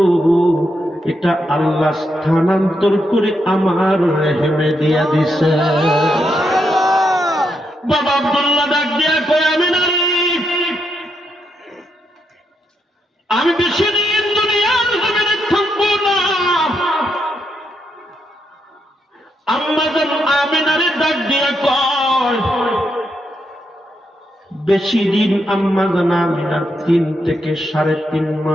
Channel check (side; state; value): both; normal; correlation 0.80